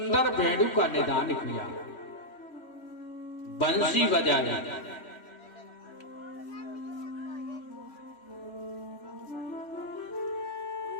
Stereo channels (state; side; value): late; right; 3.1 ms